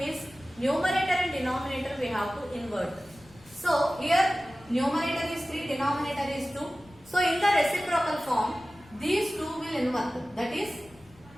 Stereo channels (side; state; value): left; noise; rumble, 25 dB below the sound